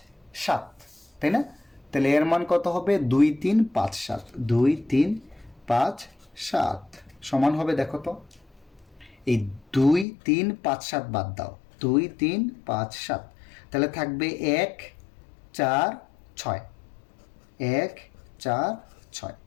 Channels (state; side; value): drops out; right; at 10.1 s